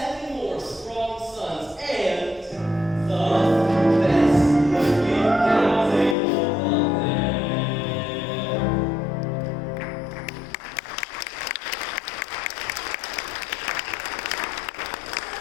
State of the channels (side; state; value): right; drops out; at 6.2 s